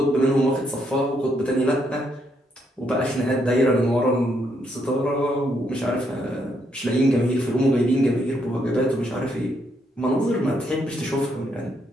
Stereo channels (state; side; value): normal; both; correlation 0.75